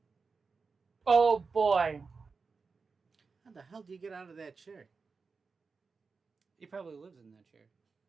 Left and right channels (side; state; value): left; quieter; 4.7 dB